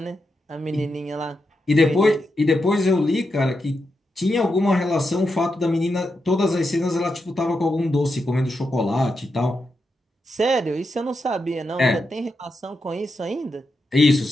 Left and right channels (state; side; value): normal; both; correlation 0.86